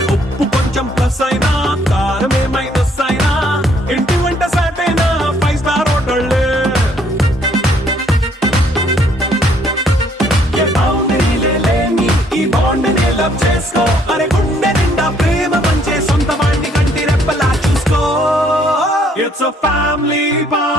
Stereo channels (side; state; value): both; normal; correlation 0.65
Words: ఉప్పు కొంచెం ప్లస్ అయినా కారమే మైనస్ అయినా ఇంటి వంట సాటైనా 5 స్టార్ హోటళ్ళే ఏ బౌండరీలే లేని ఈ బాండ్ ని లవ్ చేసుకో అరే గుండె నిండా ప్రేమ పంచే సొంత వాణ్ణి కంటి రెప్పలా చూసుకో It's a family